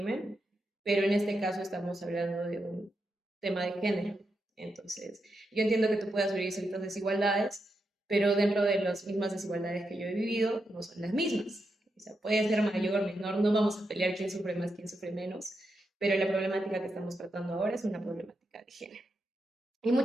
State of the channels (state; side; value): normal; both; correlation 0.85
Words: pero en este caso estamos hablando de un tema de género. Entonces, yo entiendo que tú puedas vivir ciertas desigualdades, pero dentro de las mismas desigualdades que yo he vivido, no son las mismas. O sea, puede ser mayor, menor, no vamos a pelear quién sufre más, quién sufre menos, pero la problemática que estamos tratando ahora es una problemática de género. Y